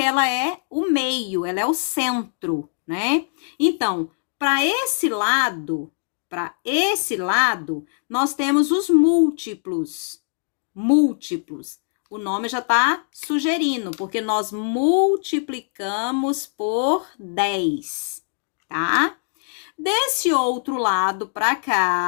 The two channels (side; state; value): right; silent; digital silence